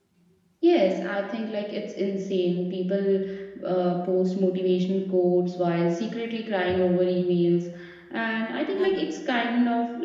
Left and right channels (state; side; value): identical; both; correlation 1.00